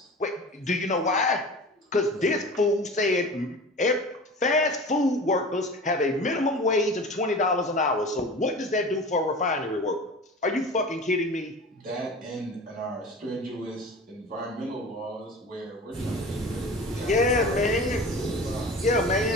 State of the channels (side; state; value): both; normal; correlation 0.36